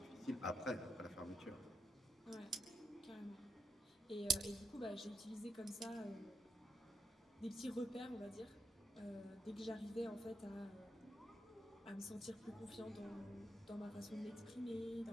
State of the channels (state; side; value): normal; both; correlation 0.82